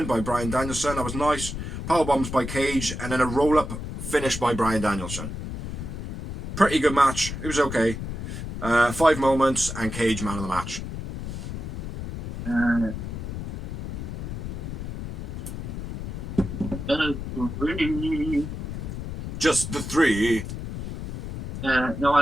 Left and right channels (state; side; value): noise; left; rumble, 6 dB below the sound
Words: by Bryan Danielson. That was nice. Power bombs by Cage. And then a roll up finish by Bryan Danielson. Pretty good match. It was okay. 5 moments and Cage man of the match. Just the 3. No,